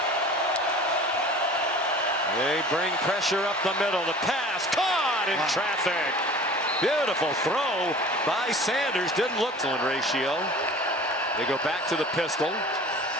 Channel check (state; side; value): normal; both; correlation 0.43